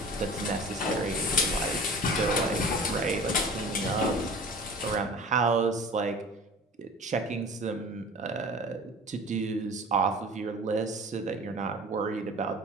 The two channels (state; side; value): normal; both; correlation 0.40